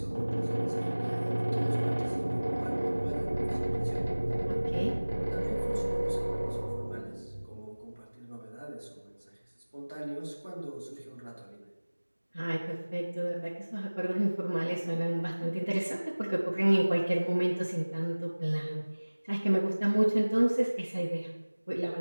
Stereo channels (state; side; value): inverted; both; correlation -1.00